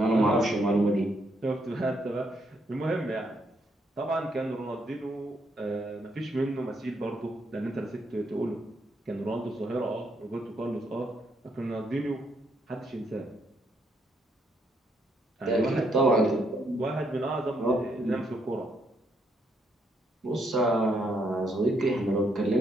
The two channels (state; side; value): normal; both; correlation 0.75